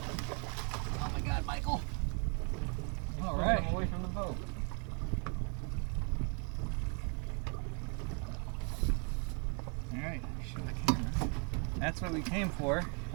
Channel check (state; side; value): quieter; left; 37.6 dB